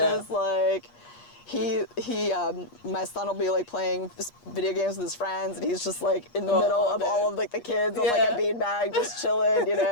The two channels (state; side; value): late; right; 8.4 ms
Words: my son will be playing video games with his friends, and he's just in the middle of all of the kids on a beanbag, just chilling,